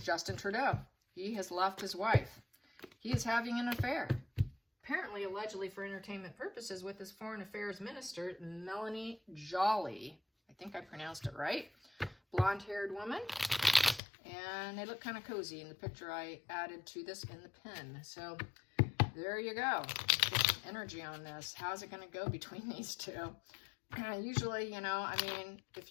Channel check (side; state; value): right; drops out; at 14.0 s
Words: Justin Trudeau. He has left his wife. He is having an affair. Apparently, allegedly for entertainment purposes, with his foreign affairs minister, Melanie Joly. I think I pronounced it right. Blonde-haired woman. And they look kind of cozy in the picture I added to this in the pin. So there you go. Get some energy on this. How's it going to go between these two? Usually, you know, I mean, if